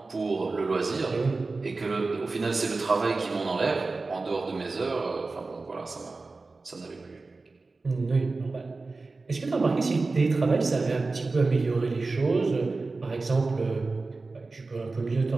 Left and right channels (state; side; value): quieter; left; 3.7 dB